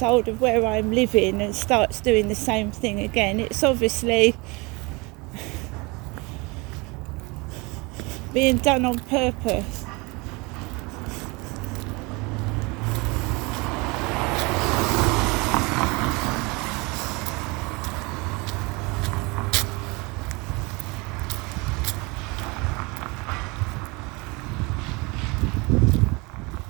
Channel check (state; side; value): quieter; left; 26.7 dB